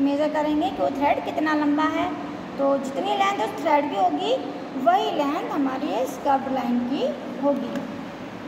मेज़र करेंगे कि वो थ्रेड कितना लंबा है। तो जितनी लेंथ उस थ्रेड की होगी वही लेंथ हमारी इस कर्व्ड लाइन की होगी।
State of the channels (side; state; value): both; identical; correlation 1.00